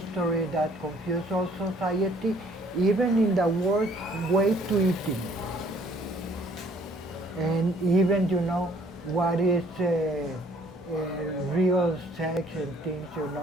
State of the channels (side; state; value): both; normal; correlation 0.60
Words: that confuses all society, even in the worst way to eating. And even, what is real sex and things,